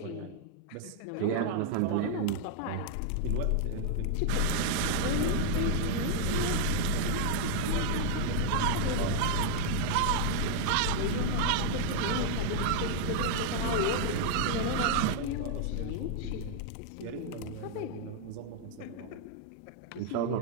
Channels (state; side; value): different; both; correlation 0.00